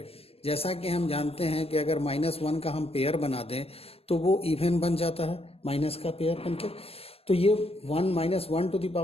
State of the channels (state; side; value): late; right; 0.29 ms